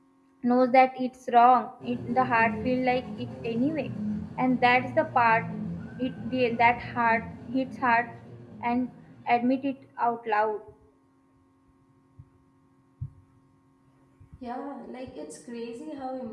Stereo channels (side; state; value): both; identical; correlation 1.00